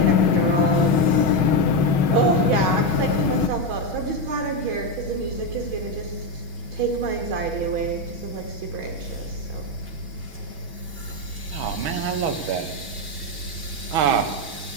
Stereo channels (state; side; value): late; left; 6.3 ms